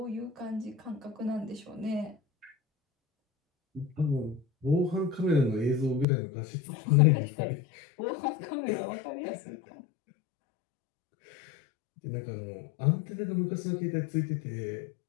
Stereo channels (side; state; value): right; drops out; at 6.1 s